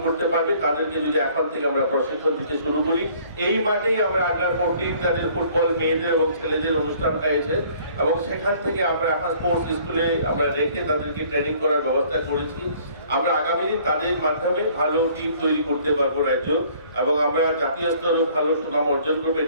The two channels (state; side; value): inverted; both; correlation -0.57